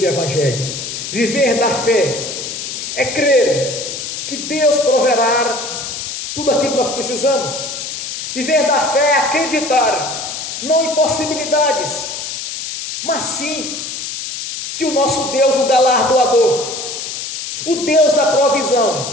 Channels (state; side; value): noise; left; hiss, 6 dB below the sound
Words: evangelho. Viver da fé é crer que Deus proverá tudo aquilo que nós precisamos. Viver da fé é acreditar, não em possibilidades, mas sim que o nosso Deus, o galardoador, o Deus da